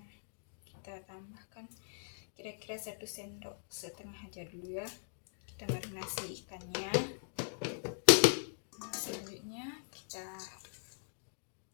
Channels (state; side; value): silent; right; digital silence